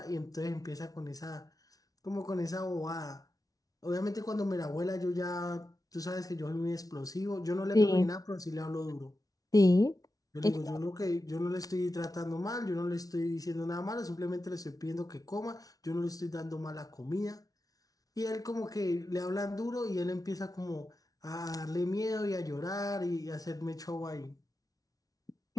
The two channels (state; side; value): late; right; 0.18 ms